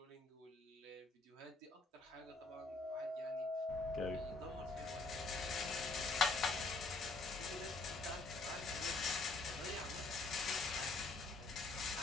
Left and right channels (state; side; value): quieter; right; 3.4 dB